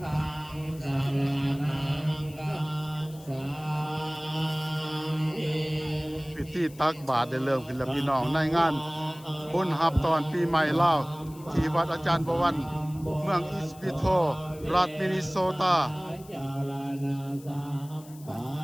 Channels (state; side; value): noise; left; hiss, 22 dB below the sound